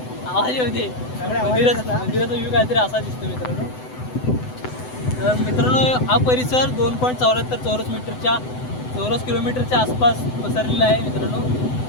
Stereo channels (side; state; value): right; late; 7.9 ms